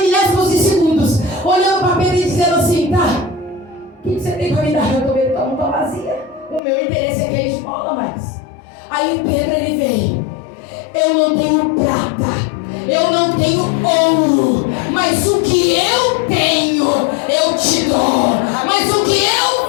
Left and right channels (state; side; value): drops out; right; at 6.6 s